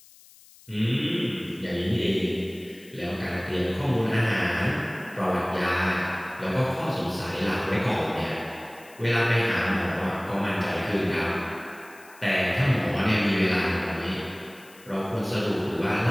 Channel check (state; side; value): noise; left; hiss, 24 dB below the sound